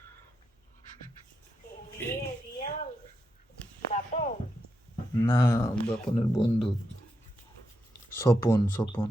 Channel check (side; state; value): both; normal; correlation 0.84